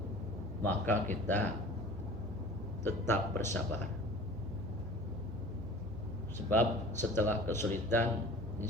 maka kita tetap bersabar. Sebab setelah kesulitan,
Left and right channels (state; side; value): noise; right; hum, 11 dB below the sound